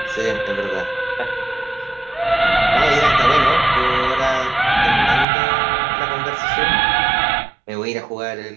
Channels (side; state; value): left; drops out; at 5.2 s